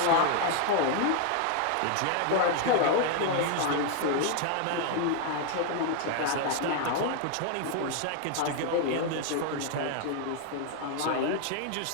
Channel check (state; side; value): different; both; correlation 0.00